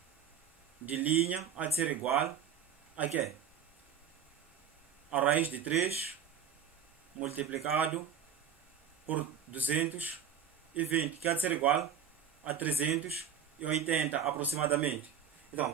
de linha há de ser igual a quê? A raiz de 3 multiplicado por 220, que há de ser igual a 380 aproximadamente.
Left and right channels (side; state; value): left; quieter; 8.1 dB